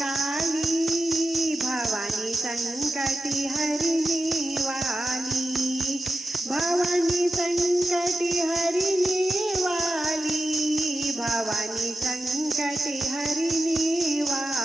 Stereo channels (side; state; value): both; normal; correlation 0.92